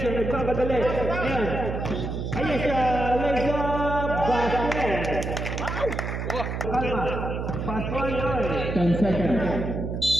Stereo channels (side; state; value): right; noise; hum, 4 dB below the sound